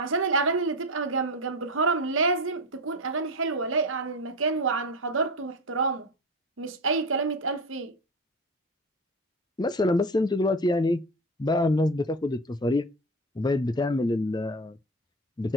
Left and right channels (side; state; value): both; normal; correlation 0.23